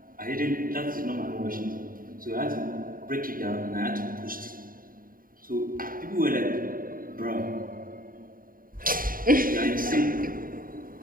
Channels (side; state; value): left; late; 0.41 ms